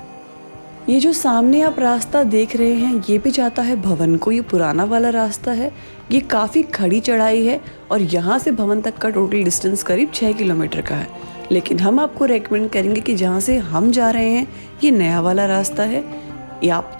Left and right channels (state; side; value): inverted; both; correlation -1.00